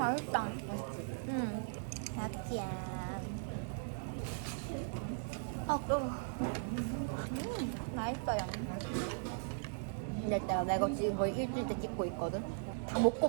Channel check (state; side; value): silent; left; digital silence